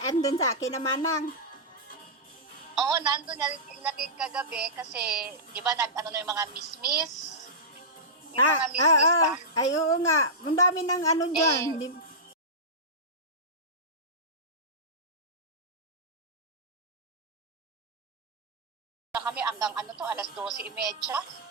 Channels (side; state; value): both; normal; correlation -0.14